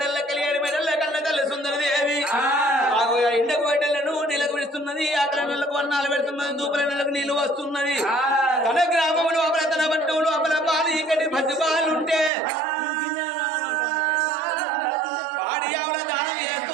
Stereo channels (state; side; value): drops out; left; at 12.3 s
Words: కలి 7 మెడల్ల కన్న తల్లి సుందరదేవి ఆగో ఎండకు బయటలను నెలకు విడుస్తున్నది ఆకలి నెలకు వన్నాలు పెడుతున్నది దూపల నెలకు నీళ్లు వస్తున్నది తన గ్రామం లోపల తన పట్టణం లోపల పాలు ఇక్కడ పది పాలుంటే పాడి ఆవుల దానం